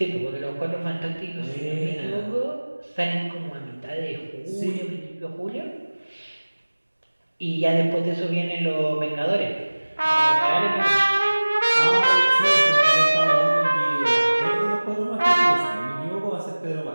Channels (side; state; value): both; inverted; correlation -1.00